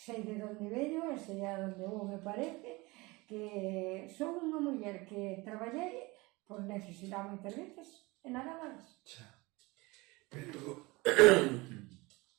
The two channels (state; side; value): quieter; left; 23.5 dB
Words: de donde veño, e sei a donde vou, me parece que son unha muller que traballei por necesidade moitas veces e nada máis. Pero